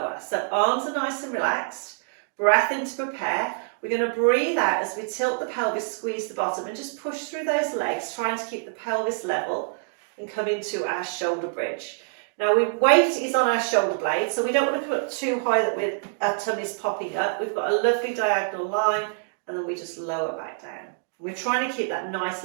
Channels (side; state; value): left; silent; digital silence